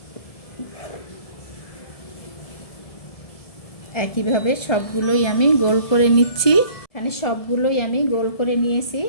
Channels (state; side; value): late; right; 1.7 ms